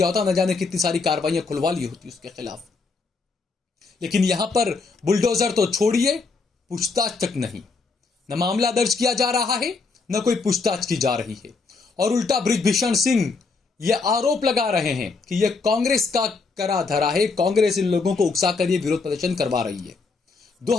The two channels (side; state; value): right; quieter; 4.3 dB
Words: होता, न जाने कितनी सारी कार्रवाइयां खुलवा ली होती उसके खिलाफ। लेकिन यहां पर बुलडोजर तो छोड़िए, पूछताछ तक नहीं, न मामला दर्ज किया जा रहा है, न कोई पूछताछ की जा रही है। और उल्टा बृजभूषण सिंह ये आरोप लगा रहे हैं कि यह कांग्रेस का करा धरा है, कांग्रेस इन लोगों को उकसा कर ये विरोध प्रदर्शन करवा रही है।